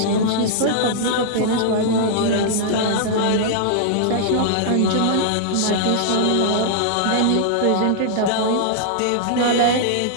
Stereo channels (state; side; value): different; both; correlation -0.01